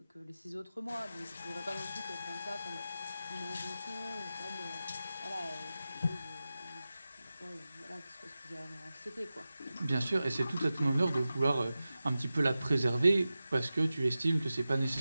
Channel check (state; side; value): inverted; both; correlation -0.94